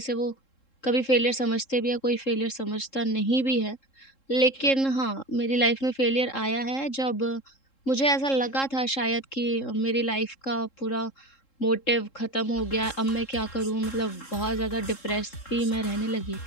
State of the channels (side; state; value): right; late; 3.7 ms